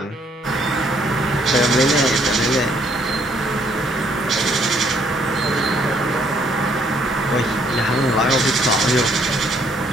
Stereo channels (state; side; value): normal; both; correlation 0.66